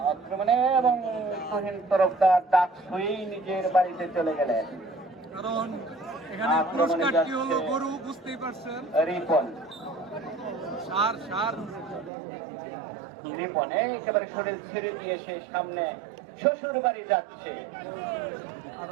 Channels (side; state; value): left; drops out; at 12.1 s